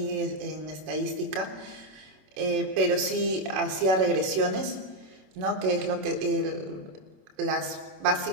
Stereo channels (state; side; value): late; left; 27 ms